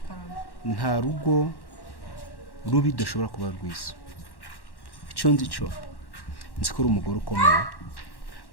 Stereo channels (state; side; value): late; right; 1.1 ms